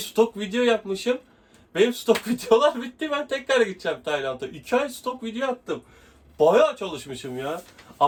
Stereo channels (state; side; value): identical; both; correlation 1.00